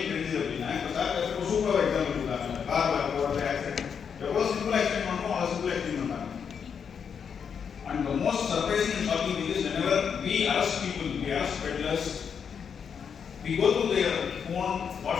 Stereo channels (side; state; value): right; quieter; 7.0 dB